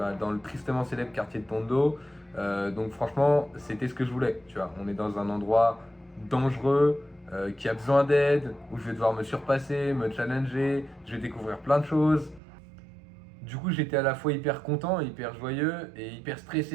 dans le tristement célèbre quartier de Tondo. Donc franchement, c'était ce que je voulais. Tu vois, on est dans un endroit dangereux, qui a besoin d'aide, où je vais devoir me surpasser, me challenger, je vais découvrir plein de choses. Du coup, j'étais à la fois hyper content, hyper joyeux et hyper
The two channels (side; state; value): left; drops out; at 12.4 s